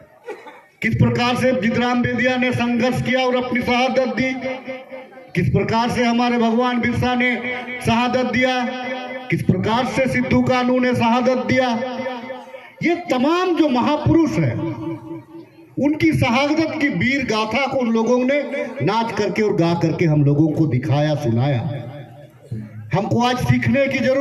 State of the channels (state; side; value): identical; both; correlation 1.00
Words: किस प्रकार से जितराम बेदिया ने संघर्ष किया और अपनी शहादत दी, किस प्रकार से हमारे भगवान बिरसा ने शहादत दिया, किस प्रकार से सिद्धू कानू ने शहादत दिया। ये तमाम जो महापुरुष हैं उनकी शहादत की वीर गाथा को उन लोगों ने नाच करके और गा करके हम लोगों को दिखाया, सुनाया। हमको आज सीखने की